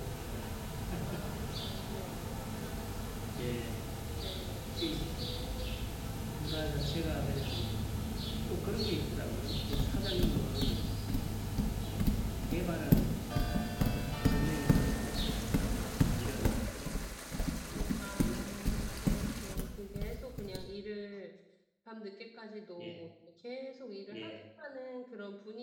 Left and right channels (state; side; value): identical; both; correlation 1.00